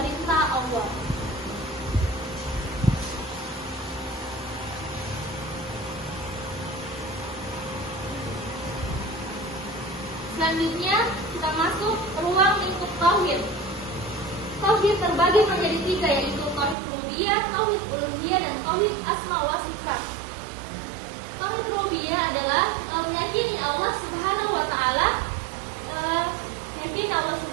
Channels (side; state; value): left; drops out; at 16.8 s